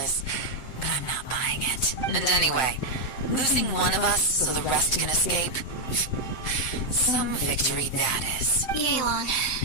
but I'm not buying it. And anyway, losing one of us so the rest can escape? Some victory that is. Yelan,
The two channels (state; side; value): late; right; 7.8 ms